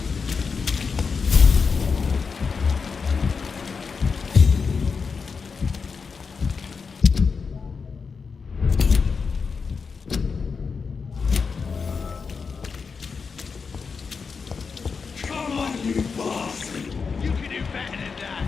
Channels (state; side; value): quieter; right; 5.3 dB